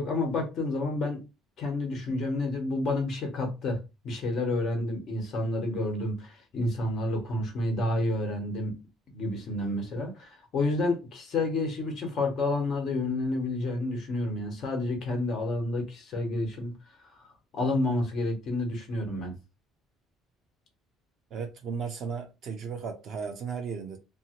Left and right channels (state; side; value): normal; both; correlation 0.65